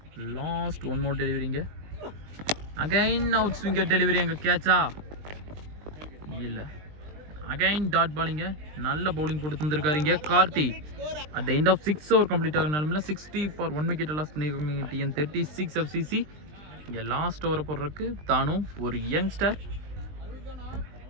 லாஸ்ட் 1 மோர் டெலிவரிங்க. அகைன் அவுட் ஸ்விங்கர் டெலிவரி அங்கே கேட்சா? இல்லை. அகைன் டாட் பாலிங்க. நல்ல பவுலிங் போட்டு தந்துருக்காருங்க Karthi. At the end of 6 over complete ஆகினாலுமே 60 ஃபார் 1 விக்கெட் லாஸ் பண்ணியிருக்காங்க TN 36 FCC. இங்கே லாஸ்ட் ஓவரை போடுறதுக்கு தானும் ஒரு யங்ஸ்டர்.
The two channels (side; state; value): left; late; 20 ms